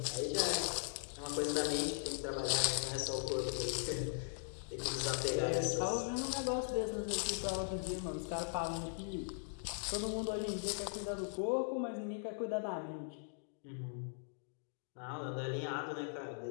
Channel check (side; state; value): right; silent; digital silence